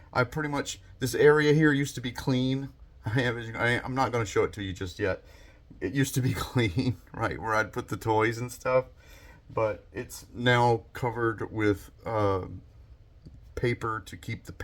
I pretty much, this area here used to be clean. I'm not going to show it to you just yet. It used to be clean, right, where I'd put the toys and stuff. But it's now covered with paper to keep the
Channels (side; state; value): both; identical; correlation 1.00